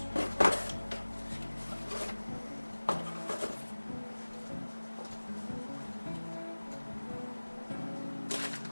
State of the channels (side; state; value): both; inverted; correlation -1.00